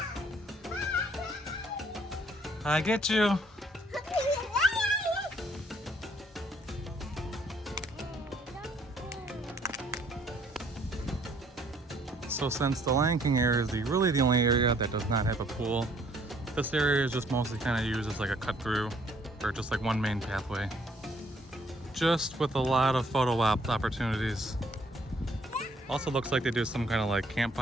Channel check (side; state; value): both; normal; correlation 0.63